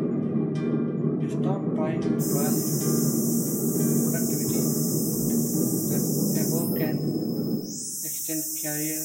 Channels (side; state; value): both; identical; correlation 1.00